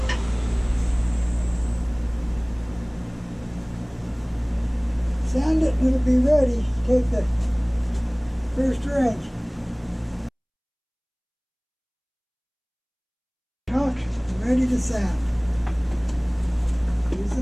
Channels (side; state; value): both; identical; correlation 1.00